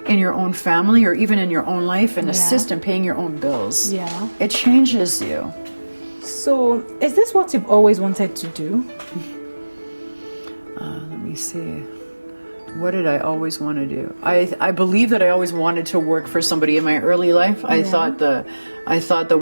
in your own family or even in your own life and assist in paying your own bills, it changes you. So is this what you've always wanted to do? Let me see. What did I always want to do? I believe that I always wanted to work for somebody in my early life. I thought the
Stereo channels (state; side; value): inverted; both; correlation -1.00